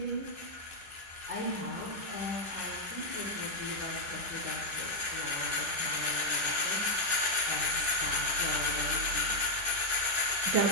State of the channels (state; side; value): late; left; 10 ms